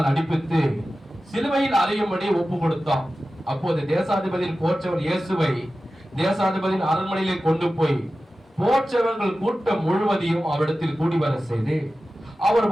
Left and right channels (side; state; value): both; normal; correlation 0.94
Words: அடிப்பித்து சிலுவையில் அறையும்படி ஒப்பு கொடுத்தான். அப்போது தேசாதிபதியின் போற்றவர் இயேசுவை தேசாதிபதியின் அரண்மனையிலே கொண்டு போய் போற்றவர்கள் கூட்டம் முழுவதையும் அவரிடத்தில் கூடி வர செய்து அவர்